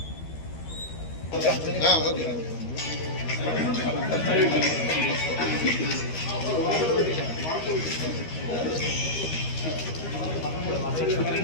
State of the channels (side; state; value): right; late; 13 ms